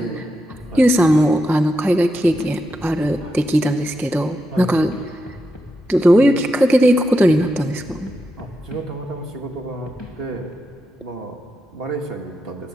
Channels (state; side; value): normal; both; correlation 0.86